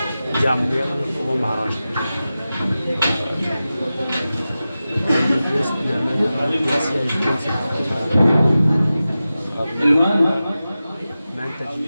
जामलिया वो महाराष्ट्र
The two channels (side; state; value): both; inverted; correlation -0.94